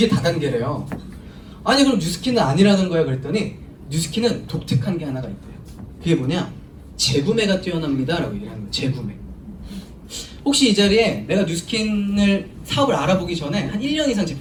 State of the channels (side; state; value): both; identical; correlation 1.00